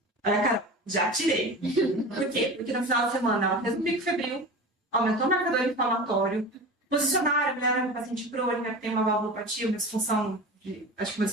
Olha, cara, já tirei. Por quê? Porque no final de semana ela fez um pico febril, aumentou o marcador inflamatório, posicionaram, olharam o paciente crônica, que tem uma valvulopatia, uma disfunção, acho que uma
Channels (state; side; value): normal; both; correlation 0.32